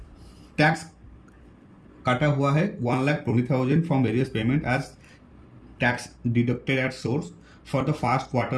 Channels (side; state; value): both; identical; correlation 1.00